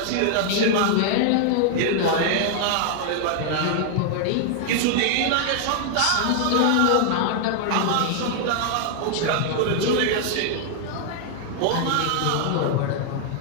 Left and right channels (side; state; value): both; different; correlation 0.00